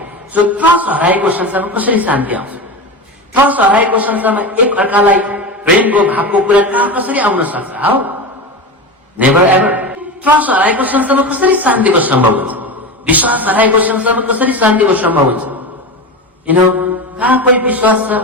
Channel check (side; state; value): both; normal; correlation 0.24